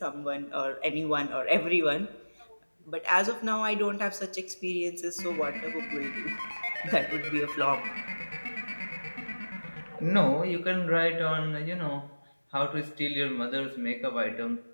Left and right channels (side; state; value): both; inverted; correlation -1.00